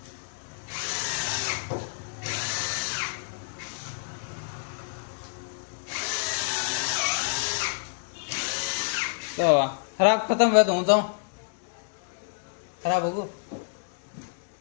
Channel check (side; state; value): right; silent; 59 dB below the other